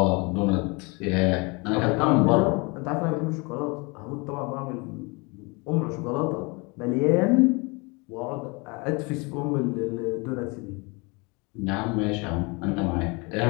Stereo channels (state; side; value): quieter; right; 28.7 dB